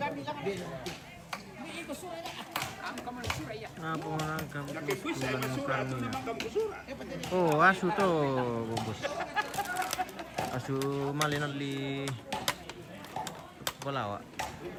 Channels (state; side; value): identical; both; correlation 1.00